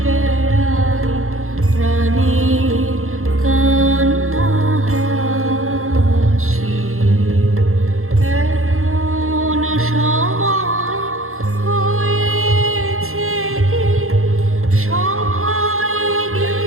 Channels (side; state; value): left; late; 0.62 ms